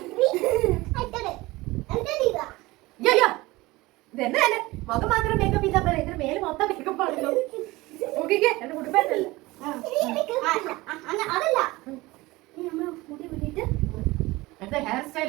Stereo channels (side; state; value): left; quieter; 20.6 dB